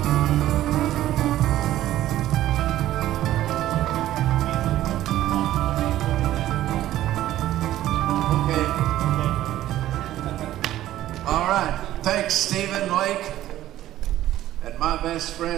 okay. All right. Thanks, Stephen Lake. And my best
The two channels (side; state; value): left; quieter; 13.7 dB